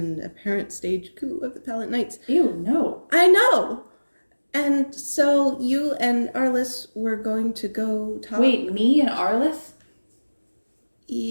apparent stage coup of the Pallet Knights. ew, no. I know. And so you and Arliss were going to go talk. Wait, me and Arliss?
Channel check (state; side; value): inverted; both; correlation -1.00